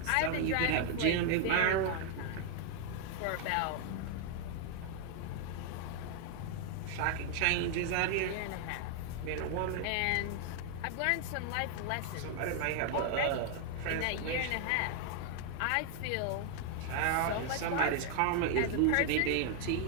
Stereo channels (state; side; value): different; both; correlation 0.00